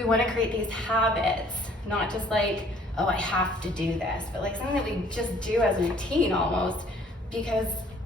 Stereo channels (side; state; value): both; normal; correlation 0.58